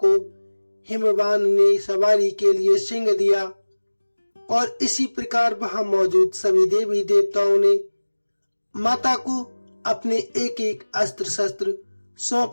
को हिमवान ने सवारी के लिए सिंह दिया और इसी प्रकार वहां मौजूद सभी देवी देवताओं ने माता को अपने एक एक अस्त्र शस्त्र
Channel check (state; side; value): inverted; both; correlation -1.00